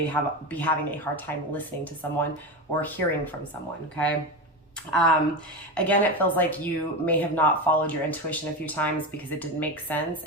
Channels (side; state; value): both; normal; correlation 0.19